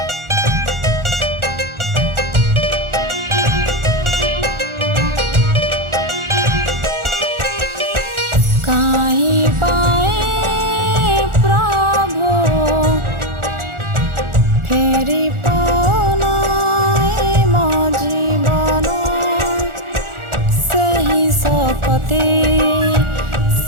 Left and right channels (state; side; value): late; left; 1.4 ms